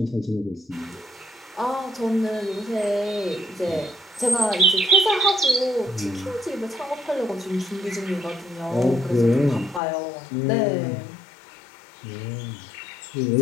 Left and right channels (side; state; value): right; drops out; at 9.8 s